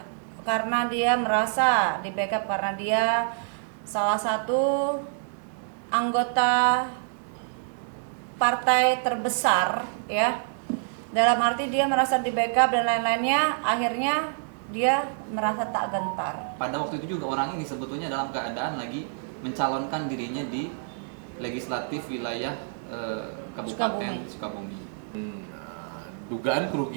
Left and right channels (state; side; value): silent; left; 60 dB below the other